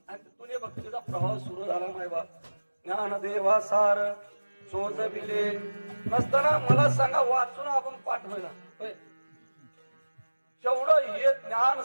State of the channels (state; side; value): inverted; both; correlation -1.00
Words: आणि तिथून भक्तीचा प्रवाह सुरू झाला मायबा ज्ञानदेवा सार सोज बिले नसताना मला सांगा वाचून आपण पाठवायला जेवढं हे ज्ञान